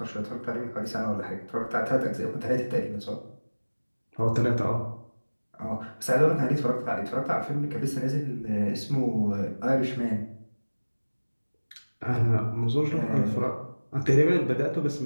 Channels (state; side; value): inverted; both; correlation -1.00